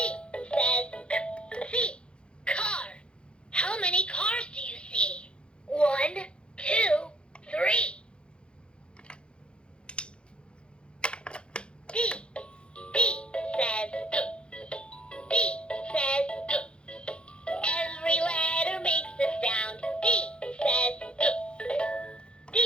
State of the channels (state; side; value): late; right; 0.055 ms